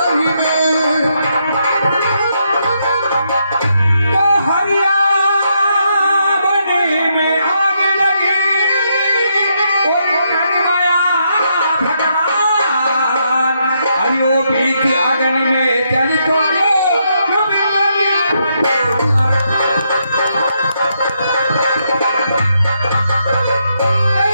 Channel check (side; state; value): both; inverted; correlation -0.78